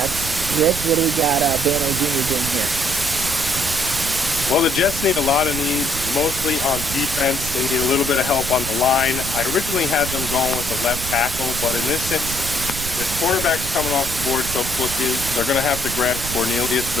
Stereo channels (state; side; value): noise; right; rumble, 8 dB below the sound